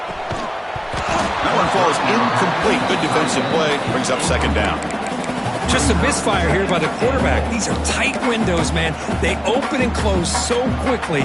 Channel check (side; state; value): both; identical; correlation 1.00